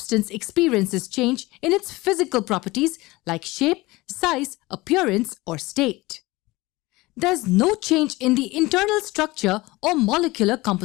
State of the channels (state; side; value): quieter; right; 20.9 dB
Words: experiences change in its physical properties like shape, size, appearance, or state. There's no change in the internal structure or molecular